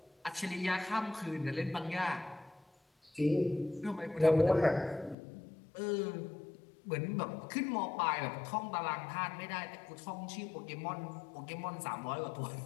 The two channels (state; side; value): drops out; right; at 5.2 s